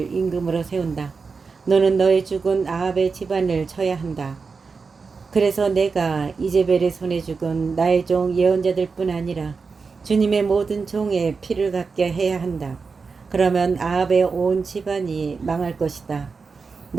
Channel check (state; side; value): quieter; left; 4.8 dB